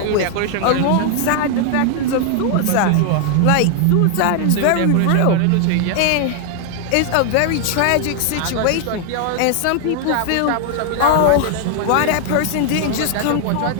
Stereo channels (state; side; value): different; both; correlation 0.00